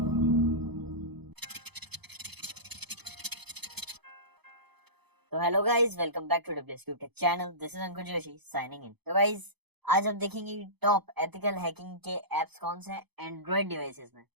तो hello guys, welcome back to WSQ tech channel. This is Ankur Joshi signing in. तो गाइस, आज हम देखेंगे टॉप एथिकल हैकिंग के एप्स कौन से हैं एंड्रॉइड डिवाइसेस में।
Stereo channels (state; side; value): late; left; 0.98 ms